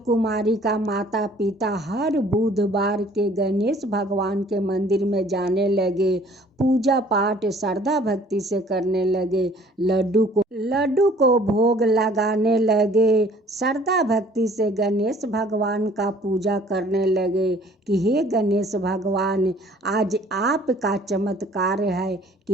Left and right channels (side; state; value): both; normal; correlation 0.55